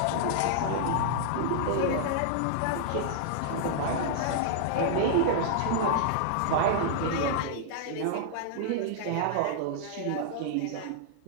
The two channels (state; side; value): different; both; correlation -0.01